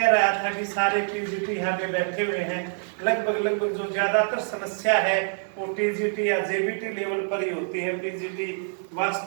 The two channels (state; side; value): silent; left; 61 dB below the other